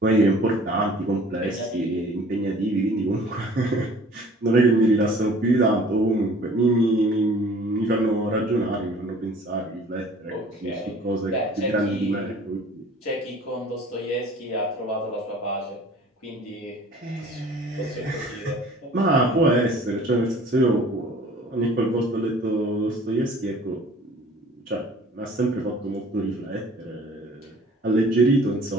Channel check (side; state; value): both; normal; correlation 0.50